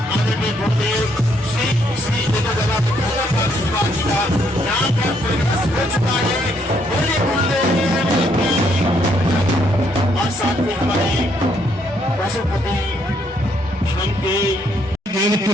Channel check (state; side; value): normal; both; correlation 0.72